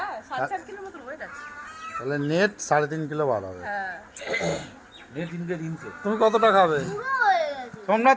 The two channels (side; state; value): both; identical; correlation 1.00